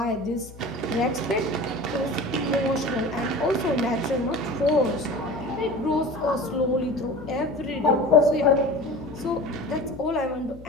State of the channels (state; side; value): noise; left; hum, 17 dB below the sound